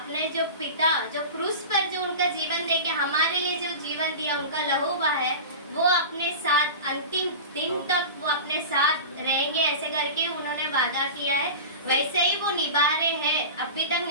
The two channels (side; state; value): both; inverted; correlation -0.30